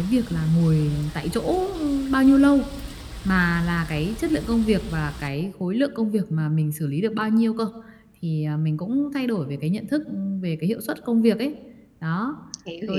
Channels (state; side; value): identical; both; correlation 1.00